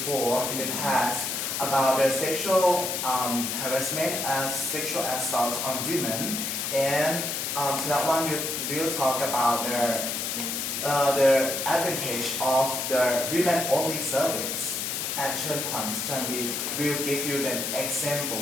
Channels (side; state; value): left; noise; hiss, 2 dB below the sound